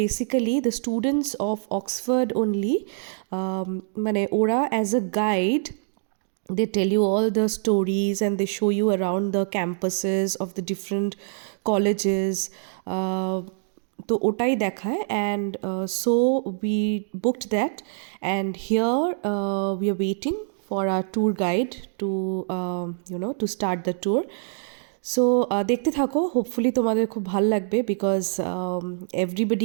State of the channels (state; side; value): silent; left; digital silence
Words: basically, the students of Oxford only, মানে ওরা as a guide, they tell you all the stories and they show you around the campuses of the different colleges. তো ওটাই দেখায়, and so we booked that, and here we are waiting for our tour guide to to start the tour. So দেখতে থাকো, hopefully তোমাদের খুব ভাল লাগবে, because